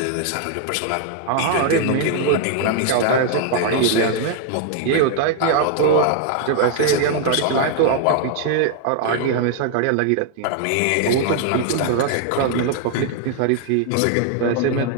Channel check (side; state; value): both; different; correlation 0.00